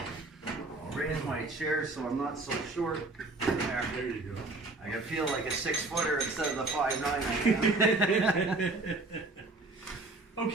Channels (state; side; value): quieter; left; 3.1 dB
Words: Raise my chair so I'm not so short. There you go. I can feel like a 6-footer instead of the 5'9" I am.